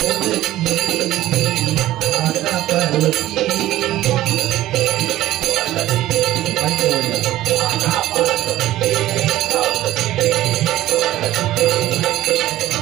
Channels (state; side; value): quieter; left; 14.9 dB